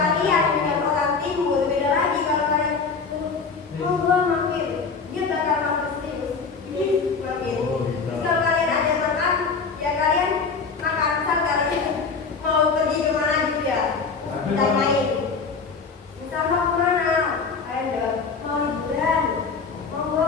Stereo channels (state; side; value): quieter; right; 4.9 dB